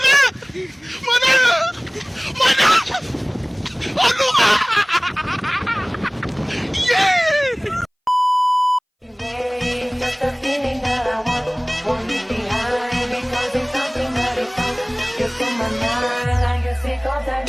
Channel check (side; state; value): both; identical; correlation 1.00